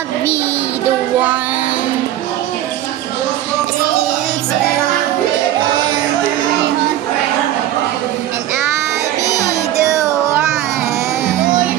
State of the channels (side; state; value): left; quieter; 13.0 dB